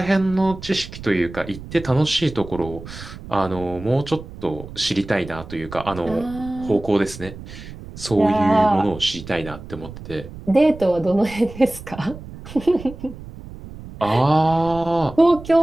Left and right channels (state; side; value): noise; right; rumble, 14 dB below the sound